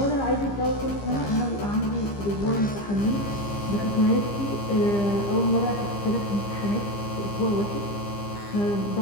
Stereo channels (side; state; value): right; late; 15 ms